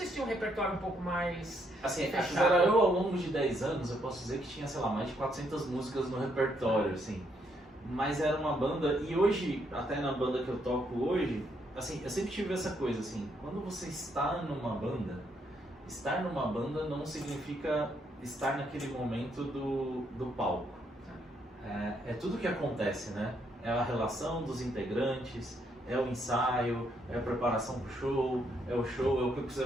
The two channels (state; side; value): normal; both; correlation 0.74